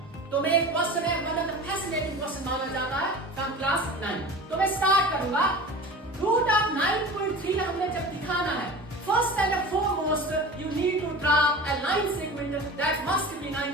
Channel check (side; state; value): both; normal; correlation 0.35